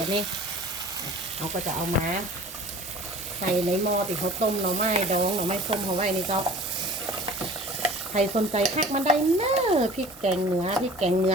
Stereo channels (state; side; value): normal; both; correlation 0.44